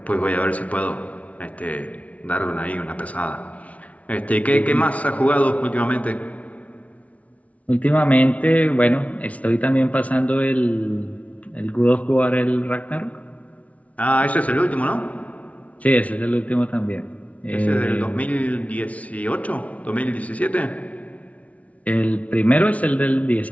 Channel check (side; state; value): right; late; 0.067 ms